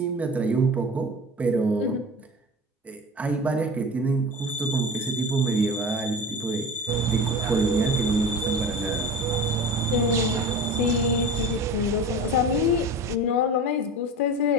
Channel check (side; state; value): both; normal; correlation 0.33